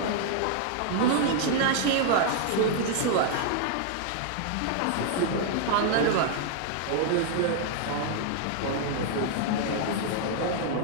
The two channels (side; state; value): both; different; correlation 0.00